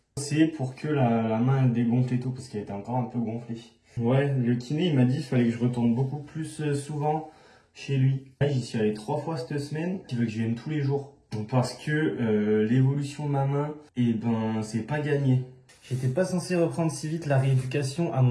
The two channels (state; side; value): identical; both; correlation 1.00